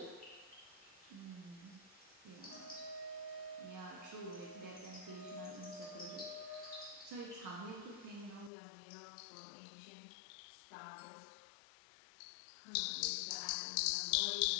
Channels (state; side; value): drops out; right; at 8.5 s